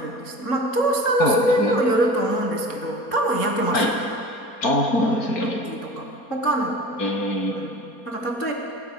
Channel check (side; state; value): right; late; 4.3 ms